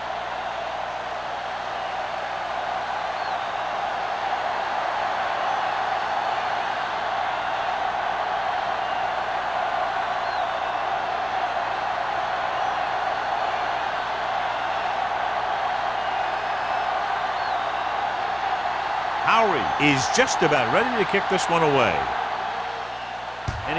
Howery is just about ready to kick this one away. And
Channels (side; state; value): both; identical; correlation 1.00